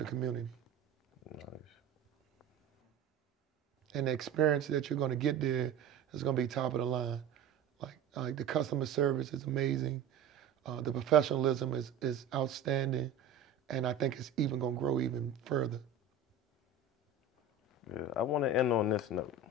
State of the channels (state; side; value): quieter; left; 5.3 dB